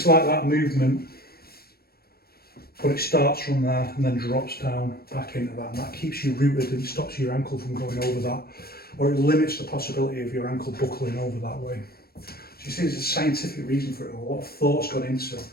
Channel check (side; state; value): right; late; 0.45 ms